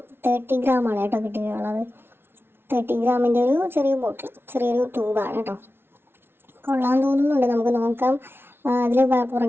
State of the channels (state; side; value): late; left; 0.11 ms